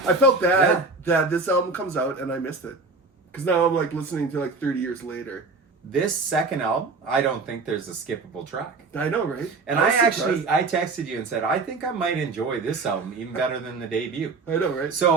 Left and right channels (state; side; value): quieter; left; 3.9 dB